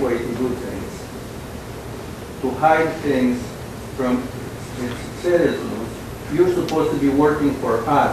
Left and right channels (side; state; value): both; identical; correlation 1.00